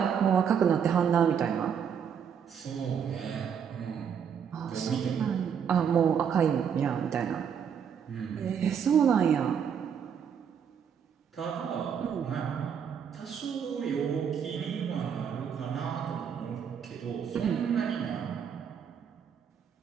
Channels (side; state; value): left; quieter; 7.6 dB